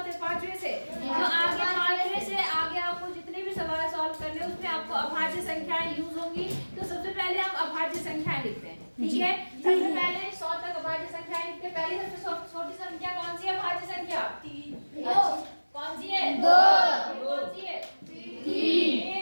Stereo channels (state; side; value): inverted; both; correlation -1.00